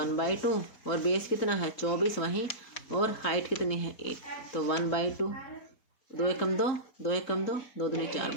और बेस कितना है 24 वहीं, और हाइट कितनी है 8, तो 1/2, 2 एकम 2, 2 एकम 2, 2 दूनी 4,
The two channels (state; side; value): late; right; 4.1 ms